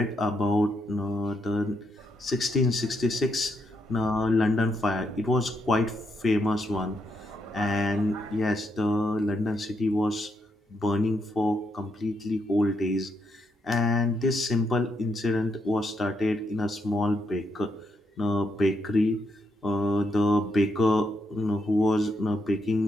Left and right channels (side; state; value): both; normal; correlation 0.79